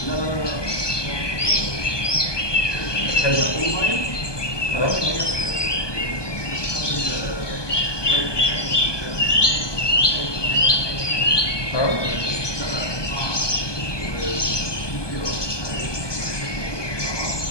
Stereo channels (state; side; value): late; right; 1.2 ms